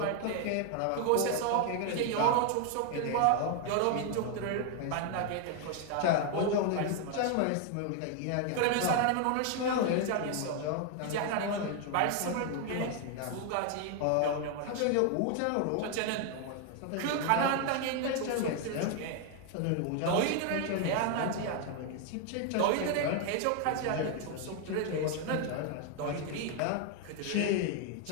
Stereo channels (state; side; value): different; both; correlation 0.00